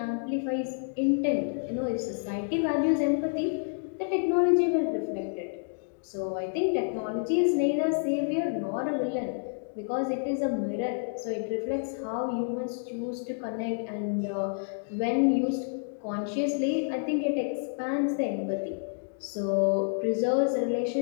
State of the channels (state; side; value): silent; right; digital silence